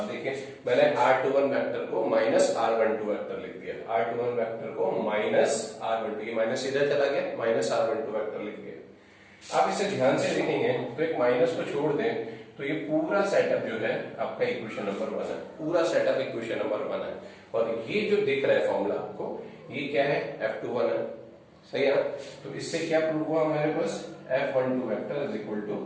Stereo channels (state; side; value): identical; both; correlation 1.00